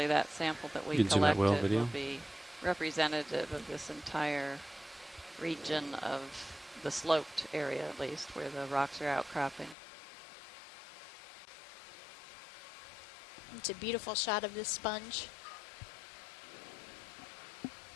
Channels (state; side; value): drops out; right; at 9.8 s